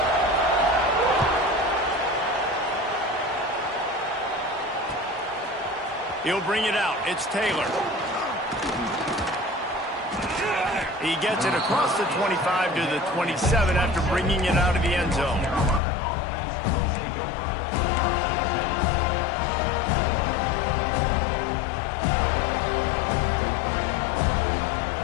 He'll bring it out. It's Taylor. He gets it across the 25 to the 27 after bringing it out of the end zone.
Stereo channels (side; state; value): right; drops out; at 15.8 s